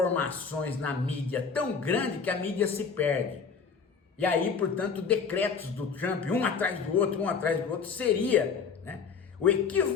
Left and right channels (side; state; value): right; quieter; 5.8 dB